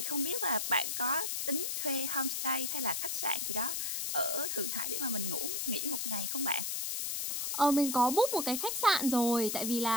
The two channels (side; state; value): left; noise; hiss, 1 dB below the sound